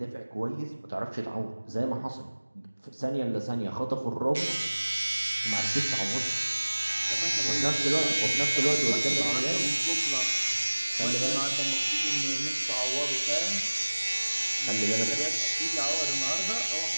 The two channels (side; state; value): both; inverted; correlation -1.00